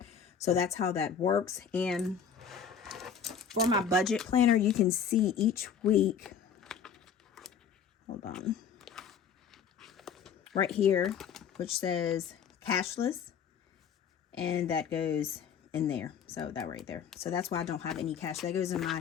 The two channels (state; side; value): quieter; right; 7.0 dB